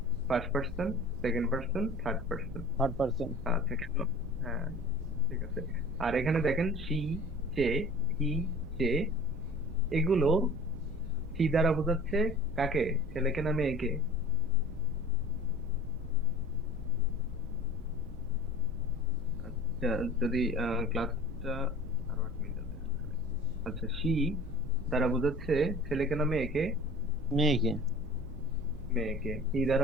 first person, second person, third person. Third person. আচ্ছা, কেন? হ্যাঁ, ঠিক আছে। আর এখানে দেখেন সি, সে, হি, সে, এগুলো সি দ্বারা বোঝাচ্ছে কাকে, ছেলেকে না মেয়েকে? আচ্ছা, যদি ক্লাসটা আরো 8 মিনিট আছে আসলে। আচ্ছা, সি দ্বারা বোঝাচ্ছে ছেলেকে না মেয়েকে? মেয়েকে। মেয়েকে। হি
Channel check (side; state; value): right; noise; rumble, 11 dB below the sound